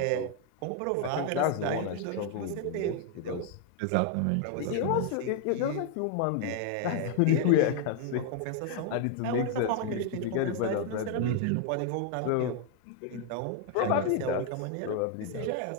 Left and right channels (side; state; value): both; different; correlation 0.00